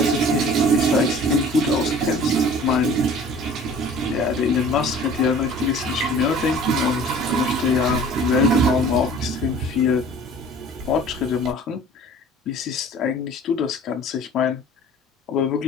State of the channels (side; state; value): both; normal; correlation 0.47